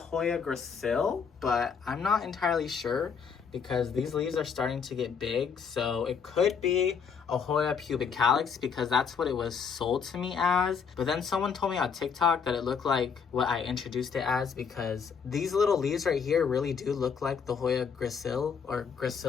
gracile, but I'm not entirely sure because these leaves are starting to get big. So it could be a Hoya pubicalis because that's what it was sold to me as. But then someone told me on TikTok that it looked like what I introduced it as because these little leaves right here really do look like the Hoya gracile or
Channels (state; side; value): quieter; right; 6.3 dB